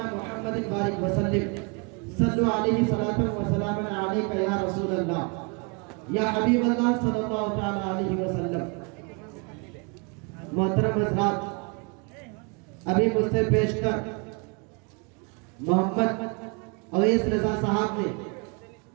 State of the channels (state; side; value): quieter; left; 33.1 dB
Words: मुहम्मदिन बारिक वसल्लिम सल्लु अलैहि सलातन व सलामन अलैका या रसूल अल्लाह या हबीब अल्लाह सल्लल्लाहु तआला अलैहि वसल्लम। मोहतरम हज़रात, अभी मुझसे पेशकर मोहम्मद अवैस रज़ा साहब ने